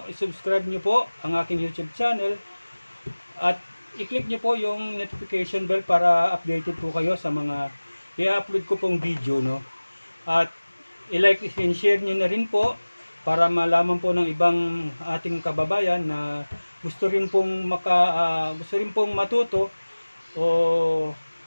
i-subscribe nyo po ang aking YouTube channel at i-click nyo po yung notification bell para updated po kayo sa mga i-upload ko pong video, no? At i-like and share nyo na rin po para malaman po ng ibang ating kababayan na gusto rin pong matuto o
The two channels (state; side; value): inverted; both; correlation -1.00